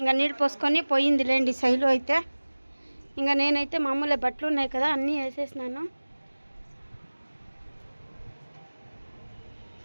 నీళ్ళు పోసుకొని పోయింది లేండి శైలు అయితే. ఇంకా నేనైతే మామూలు బట్టలు ఉన్నాయి కదా, అన్నీ వేసేసినాను.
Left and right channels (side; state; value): both; inverted; correlation -1.00